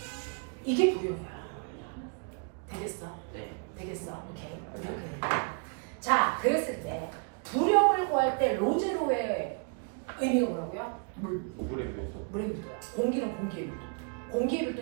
이게 부력이야. 되겠어? 네. 되겠어? 오케이. 이렇게 된다. 자, 그랬을 때 부력을 구할 때 로제로의 의미가 뭐라고요? 물에 비해서. 물의 밀도야. 공기는 공기의 밀도. 공기의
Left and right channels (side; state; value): left; quieter; 39.2 dB